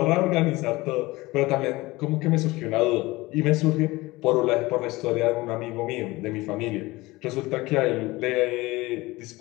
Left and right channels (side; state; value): right; quieter; 20.7 dB